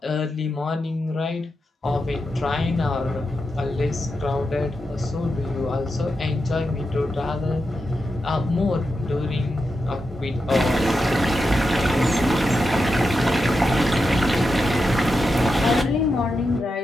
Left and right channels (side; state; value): both; normal; correlation 0.88